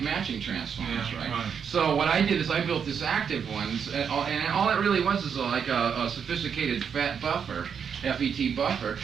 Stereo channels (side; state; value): left; quieter; 7.1 dB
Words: transformers, right? So what I did is I built this active one, and all it really was is like a sophisticated FET buffer. FET buffer,